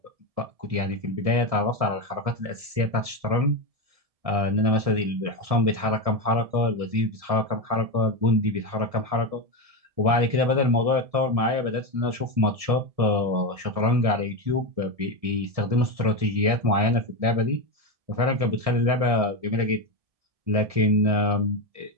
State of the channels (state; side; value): late; left; 1.7 ms